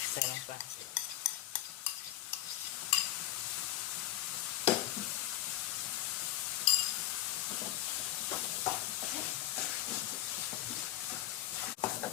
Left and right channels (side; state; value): right; quieter; 14.5 dB